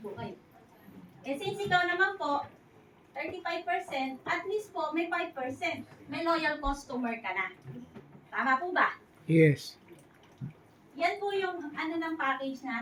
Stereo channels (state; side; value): identical; both; correlation 1.00